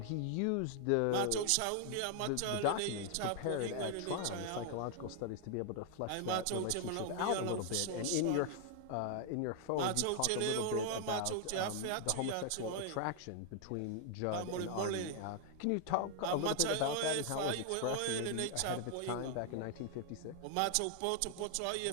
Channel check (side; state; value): both; different; correlation 0.00